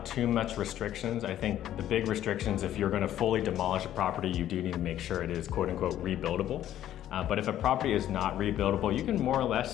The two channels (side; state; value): right; quieter; 12.0 dB